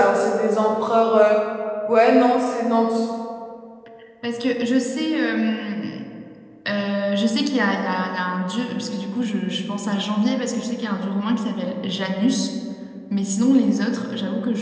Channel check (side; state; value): both; identical; correlation 1.00